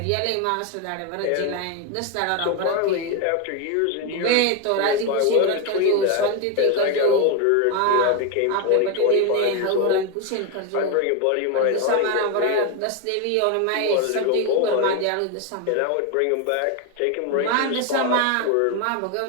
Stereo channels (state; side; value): different; both; correlation 0.02